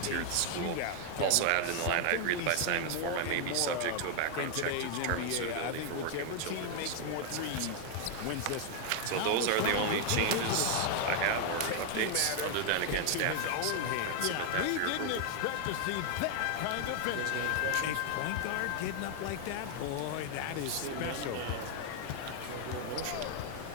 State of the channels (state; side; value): different; both; correlation 0.00